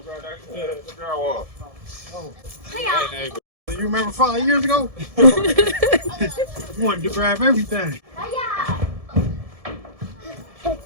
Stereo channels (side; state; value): left; late; 1.7 ms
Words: that drywall. hey, You remember 5 years ago? You wanted to grab everything.